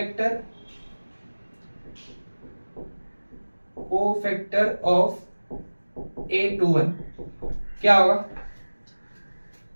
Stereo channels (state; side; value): inverted; both; correlation -1.00